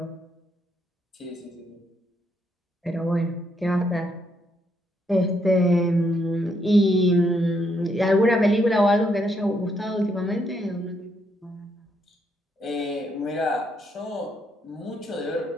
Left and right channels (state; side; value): normal; both; correlation 0.75